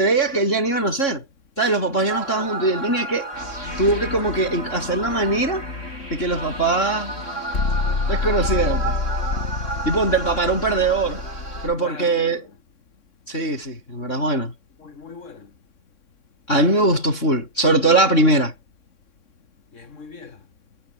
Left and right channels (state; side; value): late; right; 3.6 ms